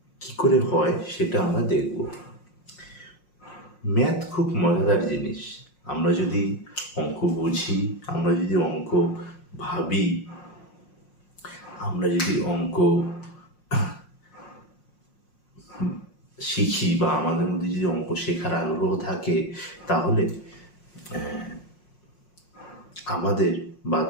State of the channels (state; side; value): late; right; 5.6 ms